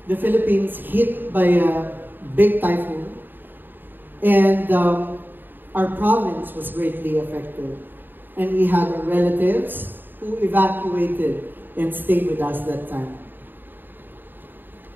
the Philippines hit by a big typhoon, and our province was greatly affected. And we had our relatives who evacuated and stayed with us that time.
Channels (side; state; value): left; late; 0.093 ms